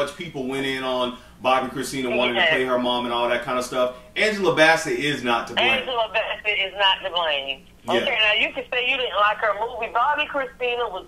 people went in on Bobbi Kristina wanting to play her mom and all that kind of stuff, Angela Bassett is not to blame. Angela Bassett is not to blame. Okay, now you can say you didn't like her movie. Bobbi Kristina was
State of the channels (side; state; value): both; identical; correlation 1.00